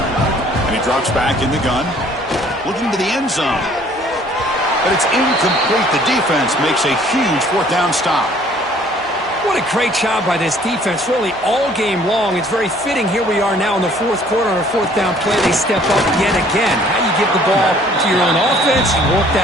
And he drops back in the gun. Looking to the end zone. But it's incomplete. The defense makes a huge fourth down stop. What a great job by this defense, really all game long. It's very fitting. Here we are now in the fourth quarter on a fourth down play. They step up yet again. How you give the ball to your own offense, you work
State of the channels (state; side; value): normal; both; correlation 0.57